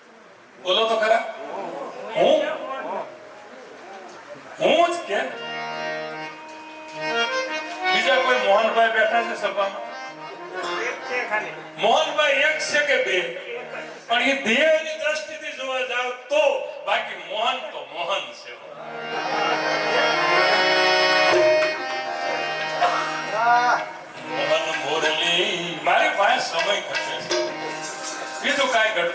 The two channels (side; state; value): both; identical; correlation 1.00